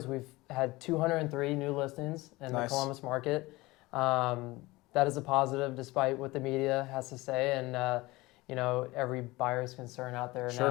we've had 203 new listings in the Columbus market. That is a positive, despite what the media has to say, and every buyer's concern out there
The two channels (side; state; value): right; quieter; 20.9 dB